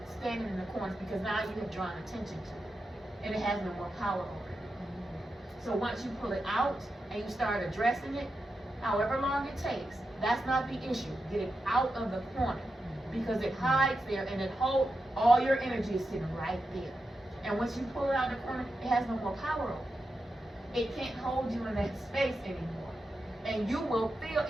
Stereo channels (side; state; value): both; normal; correlation 0.89